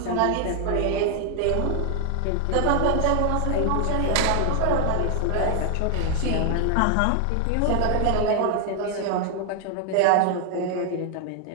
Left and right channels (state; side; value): different; both; correlation 0.00